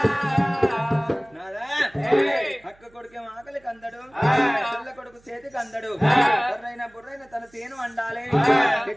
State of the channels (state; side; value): noise; right; hum, 30 dB below the sound